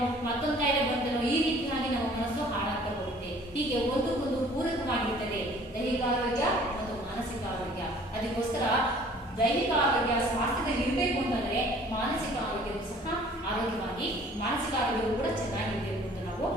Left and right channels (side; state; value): both; normal; correlation 0.53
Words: ಮತ್ತೊಂದು ಕಾಯಿಲೆ ಬಂತೇನೋ, ಈ ರೀತಿಯಾಗಿ ನಮ್ಮ ಮನಸ್ಸು ಹಾಳಾಗ್ತಾ ಹೋಗುತ್ತೆ. ಹೀಗೆ ಒಂದಕ್ಕೊಂದು ಪೂರಕವಾಗಿರ್ತದೆ ದೈಹಿಕ ಆರೋಗ್ಯ ಮತ್ತು ಮಾನಸಿಕ ಆರೋಗ್ಯ. ಅದಕ್ಕೋಸ್ಕರ ದೈಹಿಕ ಆರೋಗ್ಯ ಸ್ವಾಸ್ಥ್ಯದಲ್ಲಿ ಇರಬೇಕು ಅಂತಂದ್ರೆ ಮಾನಸಿಕ ಆರೋಗ್ಯವೂ ಸಹ ಆರೋಗ್ಯವಾಗಿ, ಮಾನಸಿಕ ಆರೋಗ್ಯವು ಕೂಡ ಚೆನ್ನಾಗಿರಬೇಕು ಅಂತ ನಾವು